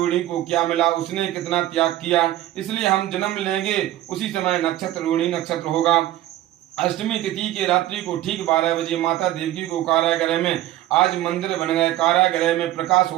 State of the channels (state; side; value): quieter; left; 14.3 dB